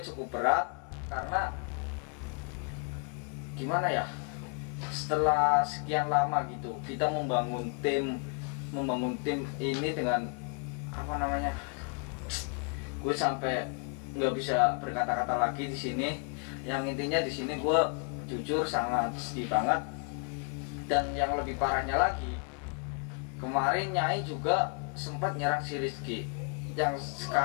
berat, karena gimana ya, setelah sekian lama gitu kita membangun tim ini dengan apa namanya, gue sampai nggak bisa berkata-kata lagi di sini. Yang intinya di sini gue jujur sangat sedih banget. Dan yang lebih parahnya lagi, kemarin Nyai juga sempat nyerang si Rizky, yang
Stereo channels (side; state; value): right; quieter; 38.2 dB